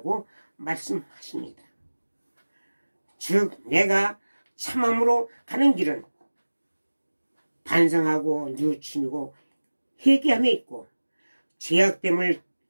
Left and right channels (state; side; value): inverted; both; correlation -1.00